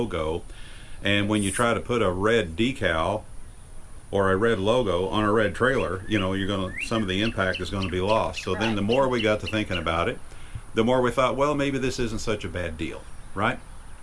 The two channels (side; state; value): both; identical; correlation 1.00